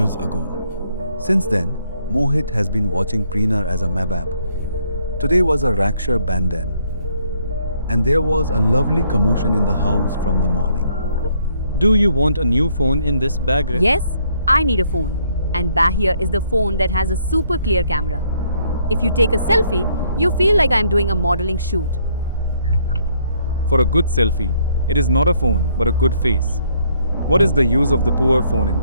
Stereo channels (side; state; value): both; inverted; correlation -0.68